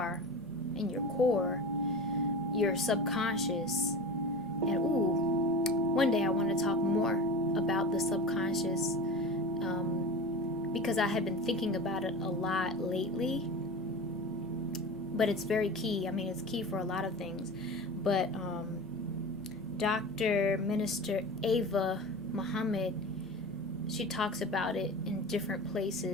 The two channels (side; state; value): both; normal; correlation 0.31